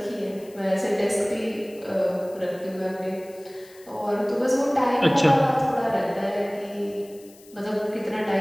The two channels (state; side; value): noise; left; hiss, 24 dB below the sound